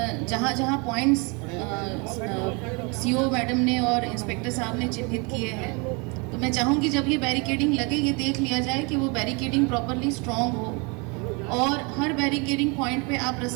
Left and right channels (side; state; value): left; quieter; 30.7 dB